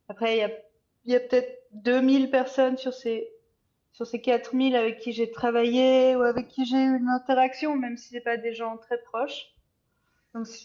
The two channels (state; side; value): identical; both; correlation 1.00